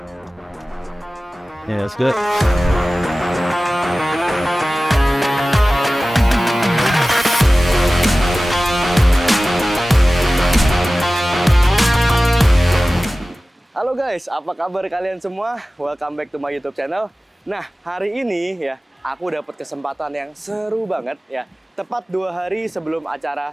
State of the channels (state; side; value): normal; both; correlation 0.97